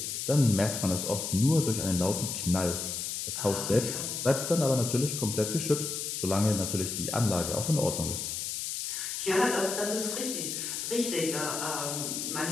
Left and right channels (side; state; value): left; noise; hiss, 3 dB below the sound